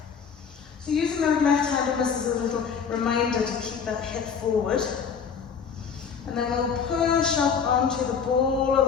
So using the left hand on this as a little reminder to keep that hip forward. And then we'll push up onto the ball of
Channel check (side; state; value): right; quieter; 6.5 dB